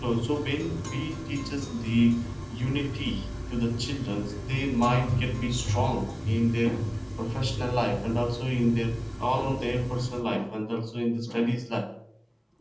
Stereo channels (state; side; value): identical; both; correlation 1.00